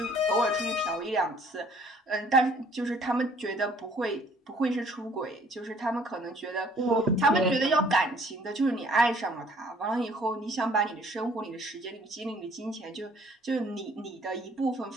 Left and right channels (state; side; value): normal; both; correlation 0.58